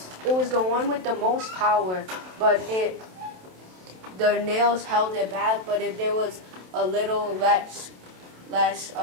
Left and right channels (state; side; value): late; left; 27 ms